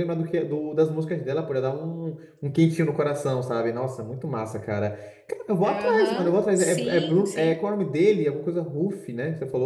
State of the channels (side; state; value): both; identical; correlation 1.00